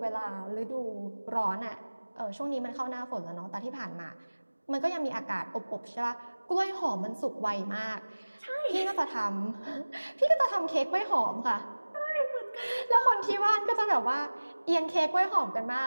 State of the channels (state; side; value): inverted; both; correlation -1.00